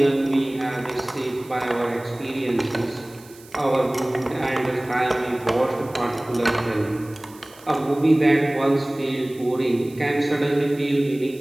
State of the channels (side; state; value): right; noise; hiss, 23 dB below the sound